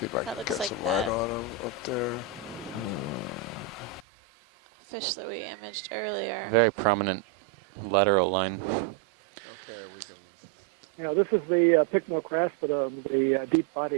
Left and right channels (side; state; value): left; drops out; at 4.0 s